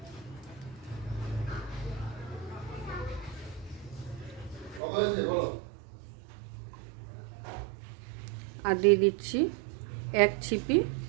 আর দিয়ে দিচ্ছি 1 ছিপি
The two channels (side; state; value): left; drops out; at 4.8 s